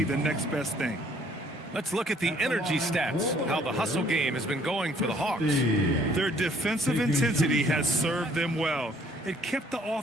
the next best thing. Let's look at the energy stats, how the hustle game has been going for the Hawks. Their defensive intensity has served them well. It kept the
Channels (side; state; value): both; normal; correlation 0.61